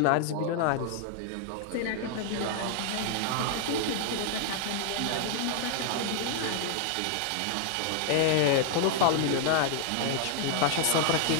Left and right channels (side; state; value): both; different; correlation 0.00